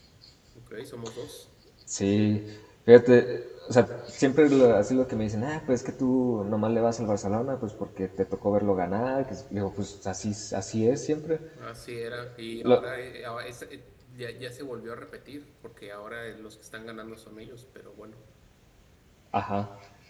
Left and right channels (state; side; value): identical; both; correlation 1.00